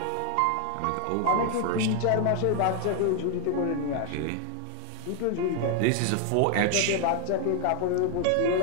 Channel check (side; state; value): both; different; correlation 0.00